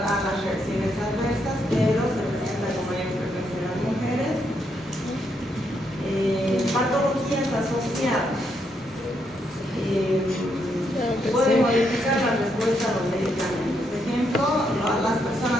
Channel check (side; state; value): both; normal; correlation 0.77